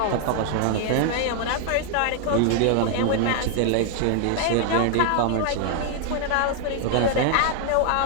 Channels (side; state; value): both; different; correlation 0.00